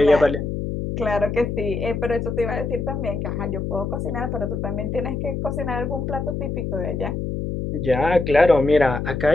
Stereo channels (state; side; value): noise; left; hum, 3 dB below the sound